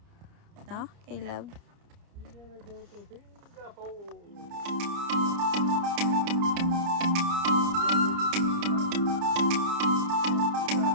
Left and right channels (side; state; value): left; late; 29 ms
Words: No, Caleb? We're gonna go to Singapore.